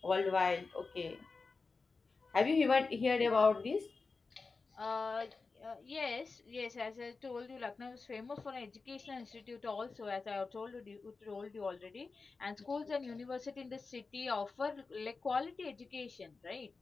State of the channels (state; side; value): quieter; right; 4.2 dB